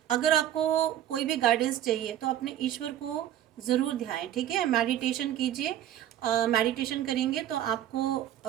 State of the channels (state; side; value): quieter; left; 11.6 dB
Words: अगर आपको कोई भी गाइडेंस चाहिए तो अपने ईश्वर को ज़रूर ध्याएं, ठीक है। मेडिटेशन कीजिए, मेडिटेशन करेंगे तो